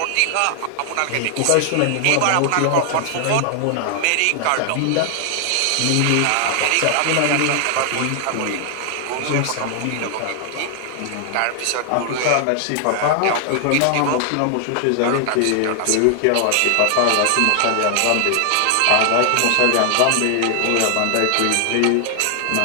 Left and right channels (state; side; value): different; both; correlation 0.00